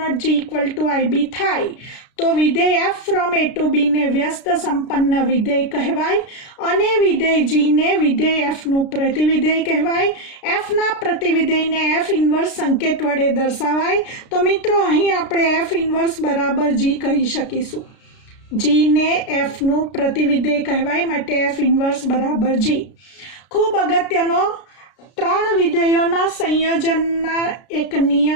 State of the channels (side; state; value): right; late; 33 ms